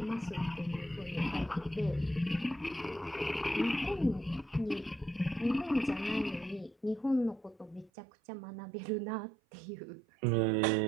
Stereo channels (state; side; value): drops out; left; at 7.9 s